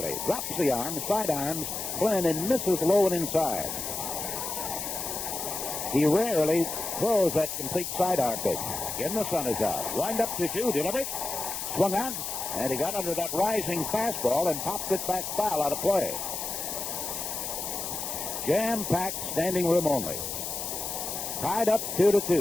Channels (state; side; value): noise; left; hiss, 4 dB below the sound